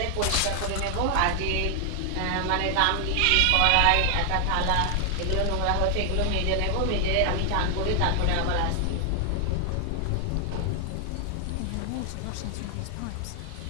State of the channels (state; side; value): different; both; correlation 0.00